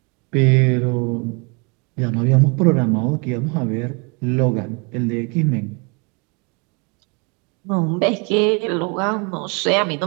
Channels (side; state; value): left; quieter; 32.0 dB